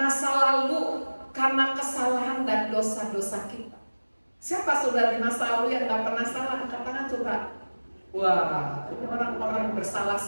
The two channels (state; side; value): inverted; both; correlation -1.00